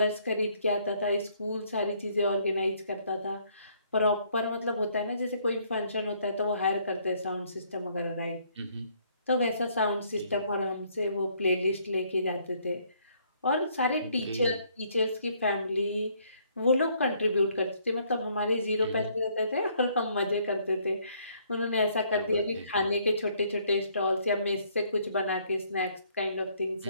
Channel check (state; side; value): inverted; both; correlation -0.66